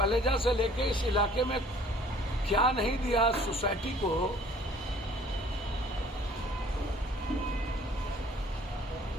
से लेके इस इलाके में क्या नहीं दिया सोसाइटी को,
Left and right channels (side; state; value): both; normal; correlation 0.54